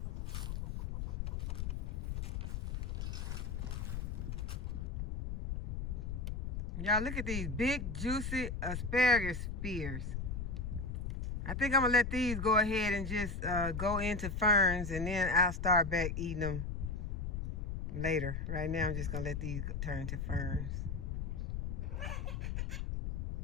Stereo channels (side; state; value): left; noise; rumble, 3 dB below the sound